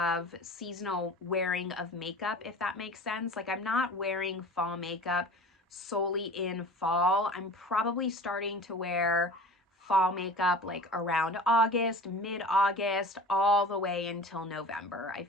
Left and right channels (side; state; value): both; normal; correlation 0.39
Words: seasonal wearing of makeup, if that makes sense. Like I'm not wearing fall makeup solely in fall. I'm probably starting to wear fall makeup like around August, mid-August, all the way until November. I